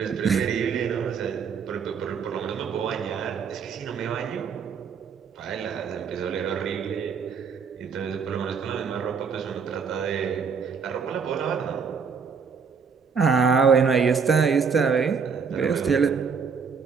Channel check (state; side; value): quieter; left; 5.9 dB